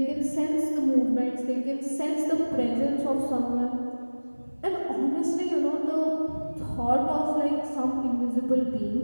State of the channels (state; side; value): inverted; both; correlation -1.00